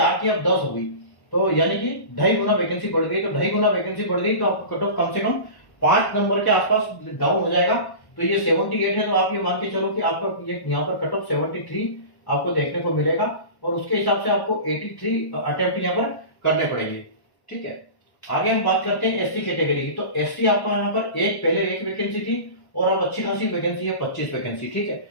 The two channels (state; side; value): late; right; 1.2 ms